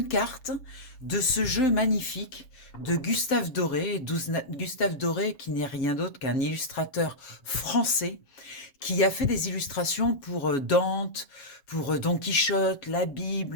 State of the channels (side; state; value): right; late; 7.2 ms